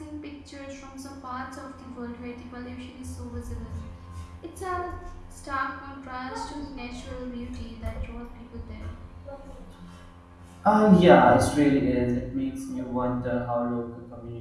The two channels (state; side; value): identical; both; correlation 1.00